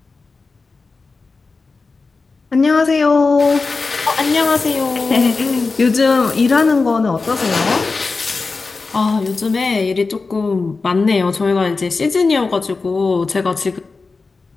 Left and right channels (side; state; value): right; quieter; 4.1 dB